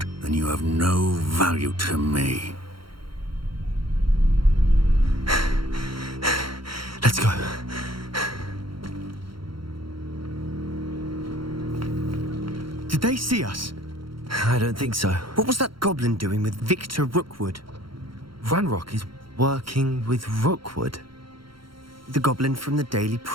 then you have no value to me. Let's go. Did they see us? I don't think so. What was that goblin doing with Victor Rookwood? Ranrock is working with Rookwood. The goblin from the Daily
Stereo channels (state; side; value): late; left; 0.73 ms